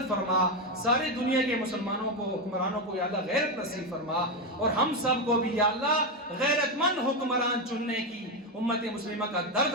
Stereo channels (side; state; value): both; normal; correlation 0.09